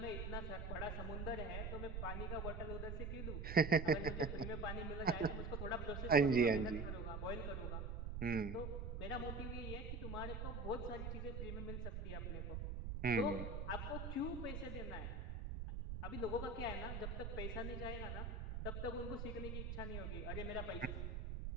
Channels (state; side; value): noise; right; rumble, 4 dB below the sound